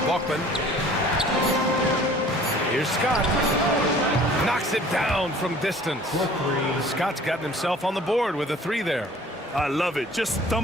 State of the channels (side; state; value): both; normal; correlation 0.50